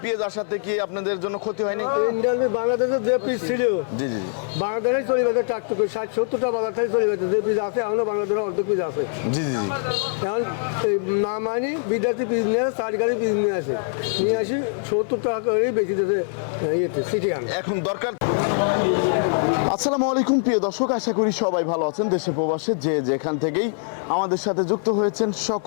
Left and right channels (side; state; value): right; silent; 59 dB below the other